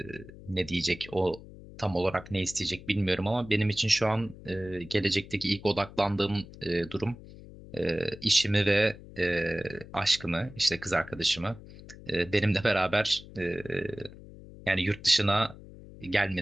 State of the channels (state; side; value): noise; left; hum, 17 dB below the sound